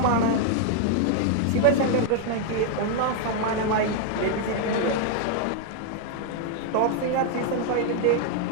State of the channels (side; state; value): both; different; correlation 0.00